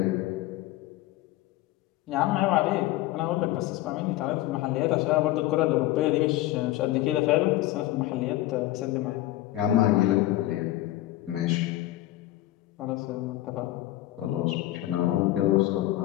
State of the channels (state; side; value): quieter; right; 15.7 dB